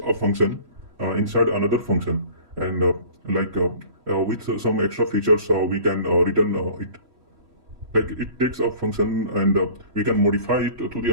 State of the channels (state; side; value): late; left; 3.0 ms